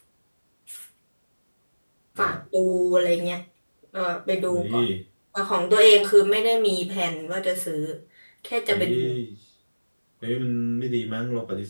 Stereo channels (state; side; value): inverted; both; correlation -1.00